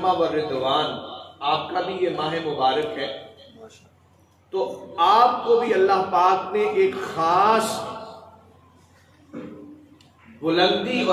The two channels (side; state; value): both; identical; correlation 1.00